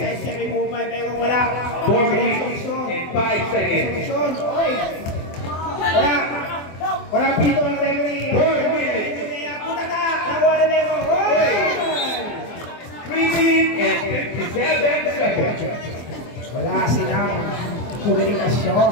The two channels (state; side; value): late; right; 24 ms